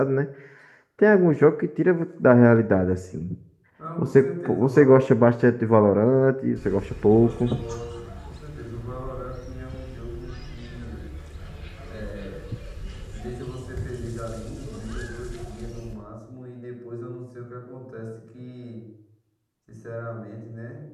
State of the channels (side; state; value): both; identical; correlation 1.00